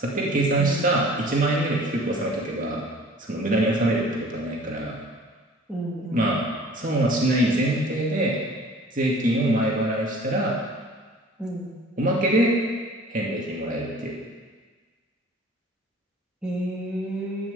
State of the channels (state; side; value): normal; both; correlation 0.48